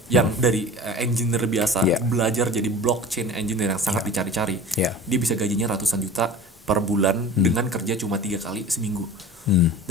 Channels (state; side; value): normal; both; correlation 0.38